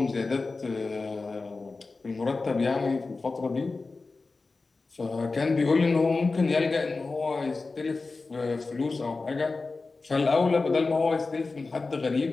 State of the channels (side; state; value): right; quieter; 3.8 dB